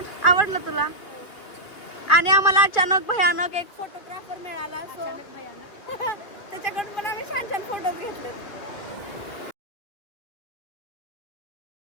आवडलं तुला? आणि आम्हाला अचानक भयानक एक फोटोग्राफर मिळाला, सो त्याच्याकडून पण आम्ही छान छान फोटोज घेतले.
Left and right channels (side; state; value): right; late; 2.3 ms